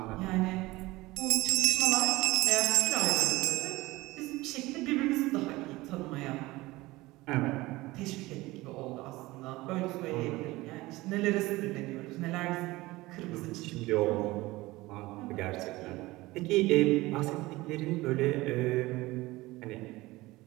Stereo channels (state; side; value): quieter; left; 19.9 dB